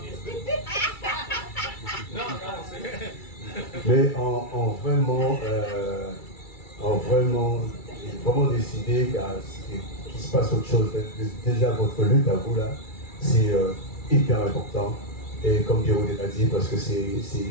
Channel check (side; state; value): right; late; 2.3 ms